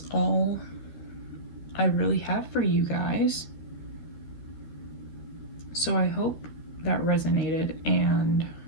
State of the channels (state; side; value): late; right; 13 ms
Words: all I really have for you guys. So I hope that resonated, and